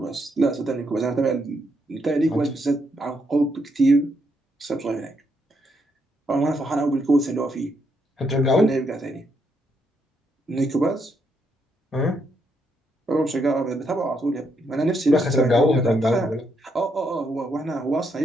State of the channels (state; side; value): normal; both; correlation 0.77